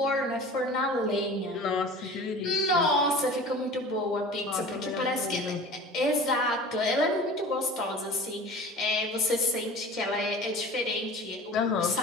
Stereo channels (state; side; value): normal; both; correlation 0.40